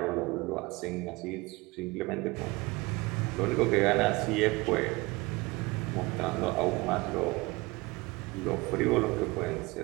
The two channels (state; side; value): quieter; left; 23.3 dB